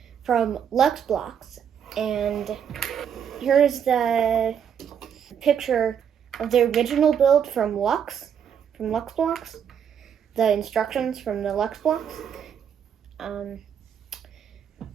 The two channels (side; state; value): left; quieter; 8.2 dB